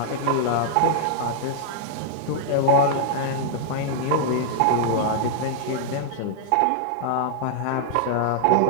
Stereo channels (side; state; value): both; different; correlation -0.01